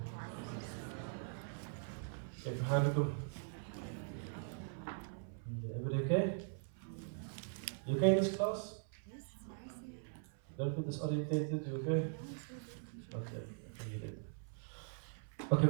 كيف حالكم؟ Everybody okay? You okay in this class? Yes. Don't feel disorientated, you okay? Okay, okay,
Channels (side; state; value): left; silent; 50 dB below the other